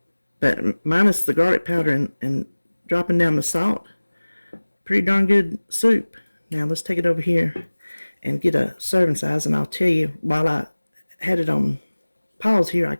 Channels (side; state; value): both; inverted; correlation -1.00